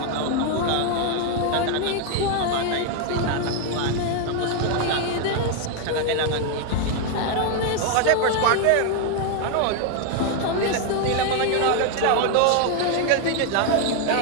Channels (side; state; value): both; different; correlation 0.01